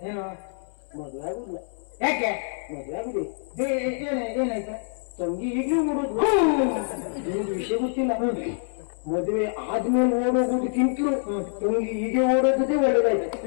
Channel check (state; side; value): silent; right; 59 dB below the other